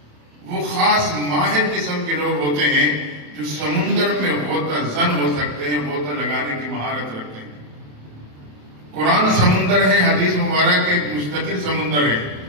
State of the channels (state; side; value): late; left; 27 ms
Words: وہ خاص ماہر قسم کے لوگ ہوتے ہیں جو سمندر میں غوطہ زن ہو سکتے ہیں، غوطہ لگانے کی مہارت رکھتے ہیں. قرآن سمندر ہے، حدیث مبارک ایک مستقل سمندر ہے.